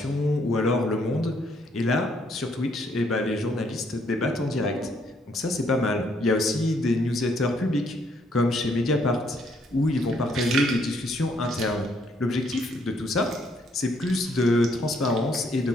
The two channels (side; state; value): both; normal; correlation 0.69